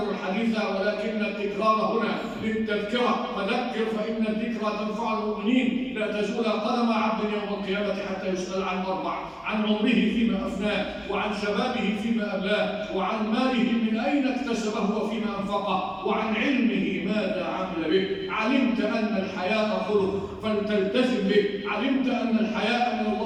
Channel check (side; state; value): both; identical; correlation 1.00